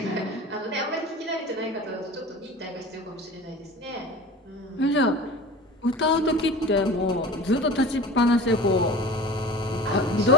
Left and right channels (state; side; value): normal; both; correlation 0.37